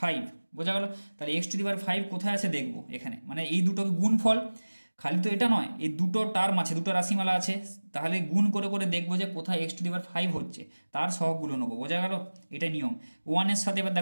বোঝা গেল? তাহলে x টু দি পাওয়ার 5 কোথায় আছে দেখবো এখানে, মানে এই দুটোকে গুণফল, খালি তো এটা নয়, এই দুটো টার্ম আছে, দুটো রাশিমালা আছে, তাহলে গুণ করে করে দেখবো যে কোথায় x টু দি পাওয়ার 5 হচ্ছে, তার সহগগুলো নেবো, বোঝা গেল? এটাই নিয়ম। 1 এর সাথে এবার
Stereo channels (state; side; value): inverted; both; correlation -1.00